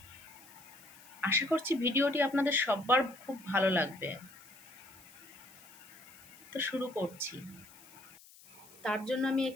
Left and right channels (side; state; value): left; noise; hiss, 22 dB below the sound